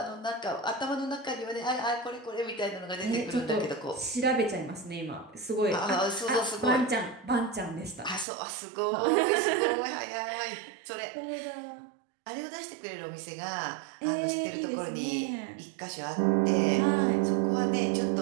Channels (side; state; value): left; drops out; at 8.2 s